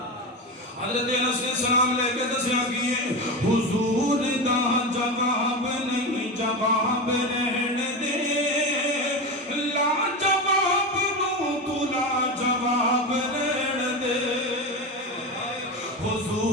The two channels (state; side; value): normal; both; correlation 0.20